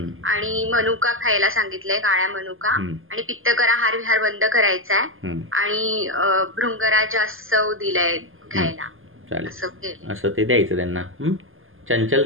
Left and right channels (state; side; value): late; left; 0.59 ms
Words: आणि मनुका खायला सांगितलंय, काळ्या मनुका, आणि पित्तकरा हार विहार बंद करायचा आहे, आणि भृंगराज सव दिलाय घ्यायला. असं ते द्यायचं त्यांना.